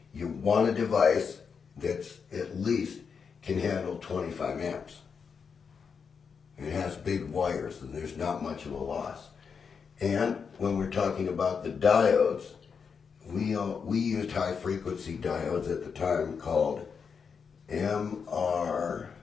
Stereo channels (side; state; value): right; quieter; 6.1 dB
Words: you want a device that's at least can handle 25 amps. It has big wires and there's not much of a loss. And when we're talking about the diodes, we used high frequency diodes at the time called